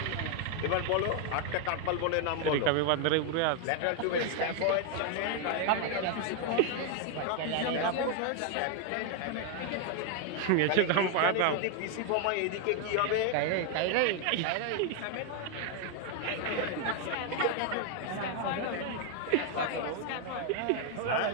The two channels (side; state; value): both; different; correlation 0.01